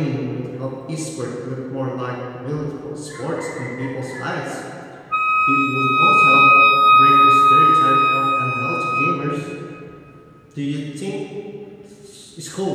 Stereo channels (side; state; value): both; identical; correlation 1.00